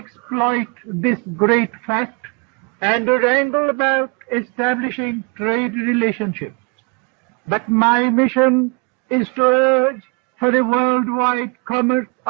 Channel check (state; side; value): quieter; left; 32.5 dB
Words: this great fact and wrangle about establishing trade relationships. But my mission is to urge for a worldwide commerce